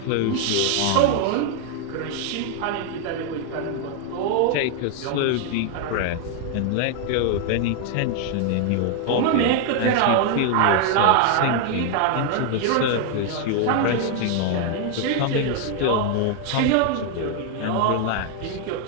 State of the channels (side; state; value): both; different; correlation 0.00